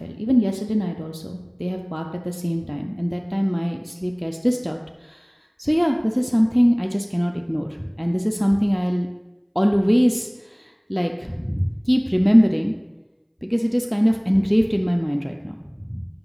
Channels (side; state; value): both; identical; correlation 1.00